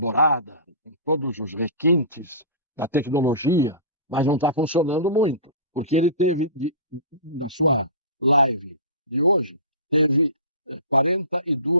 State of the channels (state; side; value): inverted; both; correlation -0.33